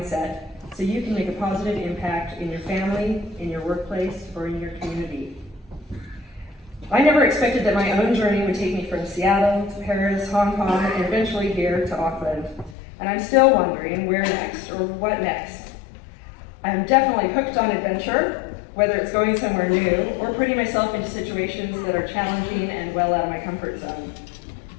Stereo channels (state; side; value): drops out; right; at 12.8 s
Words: so you can make a positive impact in your family, in your workplace, or in your community. I never expected that my own journey would take me from Seattle to Paris, Hong Kong, and eventually here to Auckland. And I'm still wondering where next, or what next. I'm definitely hooked on adventure, whether it's going somewhere new or putting myself into situations that are challenging and well out of my comfort zone.